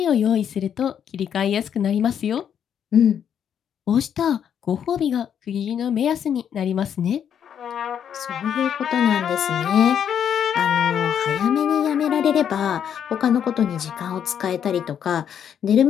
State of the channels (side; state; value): right; quieter; 8.7 dB